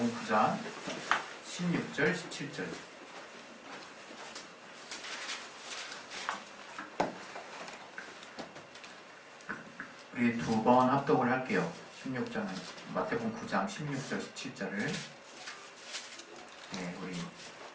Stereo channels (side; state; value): both; identical; correlation 1.00